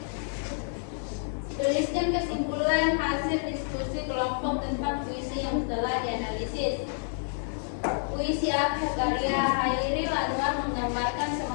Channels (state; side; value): silent; right; digital silence